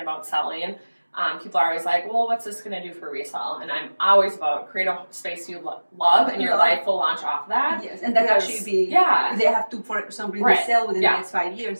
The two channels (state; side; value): inverted; both; correlation -1.00